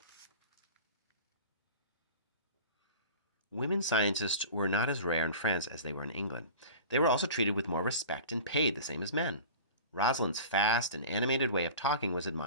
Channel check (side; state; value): both; inverted; correlation -0.38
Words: Women scientists were not as rare in France as they were in England. They were also treated with more respect and paid the same as men. Rosalind's fast and animated way of talking was